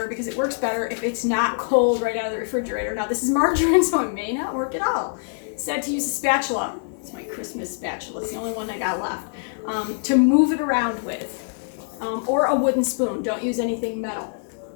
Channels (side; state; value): right; silent; digital silence